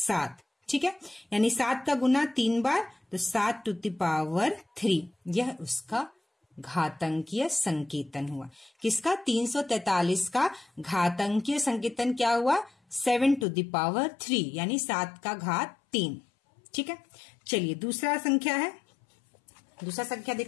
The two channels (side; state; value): right; drops out; at 13.5 s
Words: ठीक है, यानी 7 का गुना 3 बार, तो 7 टू द पावर 3। यह उसका घातांकीय संकेतन हुआ। किसका? 343 का घातांकीय संकेतन क्या हुआ? 7 टू द पावर 3, यानी 7 का घात 3। ठीक है, चलिए दूसरा संख्या है। दूसरा संख्या